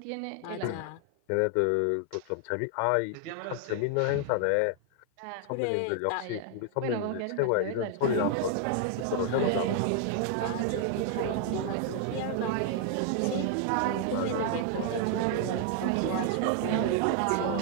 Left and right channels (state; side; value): different; both; correlation 0.00